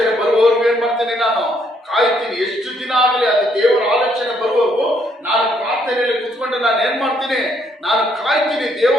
ಬರುವವರೆಗೂ ಏನ್ ಮಾಡ್ತೀನಿ, ನಾನು ಕಾಯ್ತೀನಿ. ಎಷ್ಟು ದಿನ ಆಗಲಿ ಅದು ದೇವರ ಆಲೋಚನೆ ಬರುವವರೆಗೂ ನಾನು ಪ್ರಾರ್ಥನೆಯಲ್ಲಿ ಕುತ್ಕೊಂಡು ನಾನು ಏನ್ ಮಾಡ್ತೀನಿ, ನಾನು ಕಾಯ್ತೀನಿ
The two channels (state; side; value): normal; both; correlation 0.70